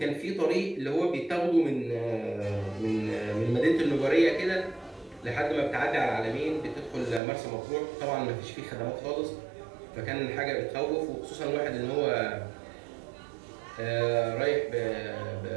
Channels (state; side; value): drops out; left; at 7.2 s